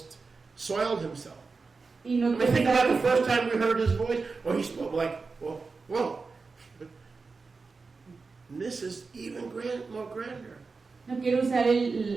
soiled himself. Y no I mean, think about the quiero first time we heard his voice. Oh, he spoke like, whoa. This is even more grander. no quiero usar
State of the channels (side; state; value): left; quieter; 4.4 dB